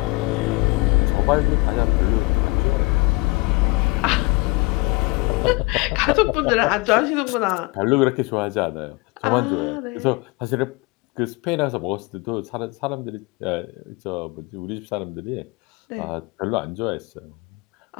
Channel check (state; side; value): quieter; right; 25.2 dB